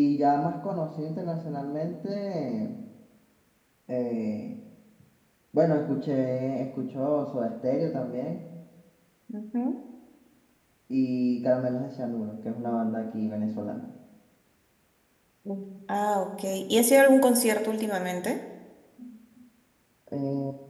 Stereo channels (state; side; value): identical; both; correlation 1.00